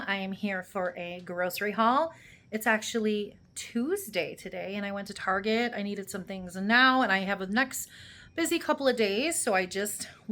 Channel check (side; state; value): both; identical; correlation 1.00